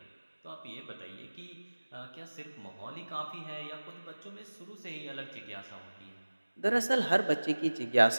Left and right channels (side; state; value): both; inverted; correlation -1.00